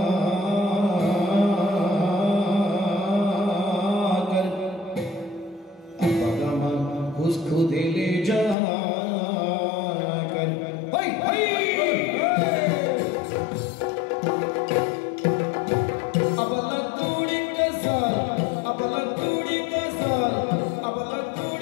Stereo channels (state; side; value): drops out; right; at 8.6 s